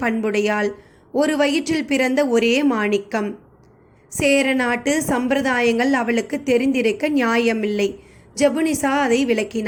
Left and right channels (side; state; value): both; identical; correlation 1.00